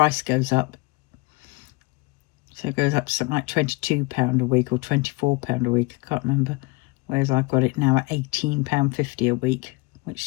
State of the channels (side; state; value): right; quieter; 25.3 dB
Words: goes up. So it goes up to something like £22 a week or £24 a week. I can't remember. Whereas I've got it now at £18.50 a week, which